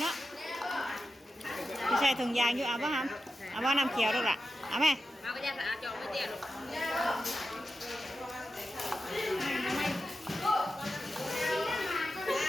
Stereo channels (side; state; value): both; normal; correlation 0.90